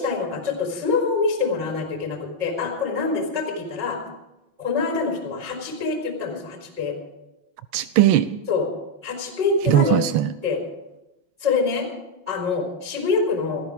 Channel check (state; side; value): late; left; 6.2 ms